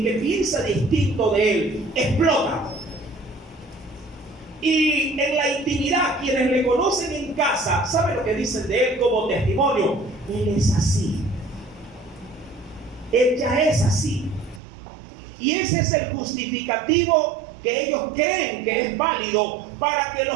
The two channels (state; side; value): drops out; left; at 14.6 s